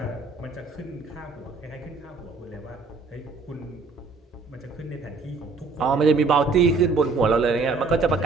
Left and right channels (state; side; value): quieter; left; 4.2 dB